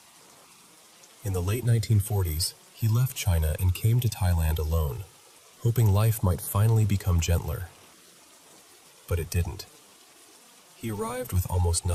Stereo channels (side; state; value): both; identical; correlation 1.00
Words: In the late 1940s, he left China and came to Thailand alone, hoping life might finally become gentler. But it didn't. He arrived with almost